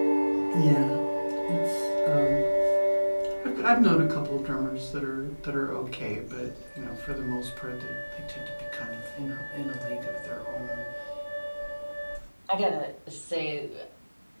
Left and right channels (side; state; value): both; inverted; correlation -1.00